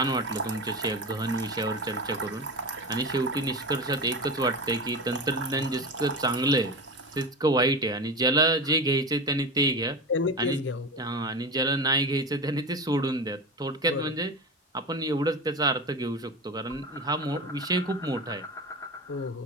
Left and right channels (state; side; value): normal; both; correlation 0.26